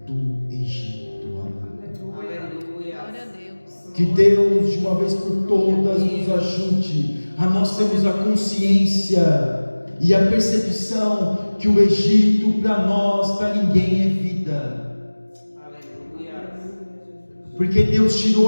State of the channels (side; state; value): both; inverted; correlation -1.00